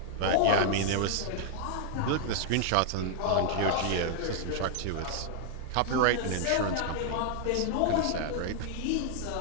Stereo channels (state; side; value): different; both; correlation 0.00